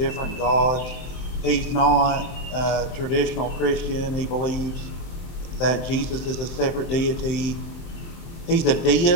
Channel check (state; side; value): late; right; 23 ms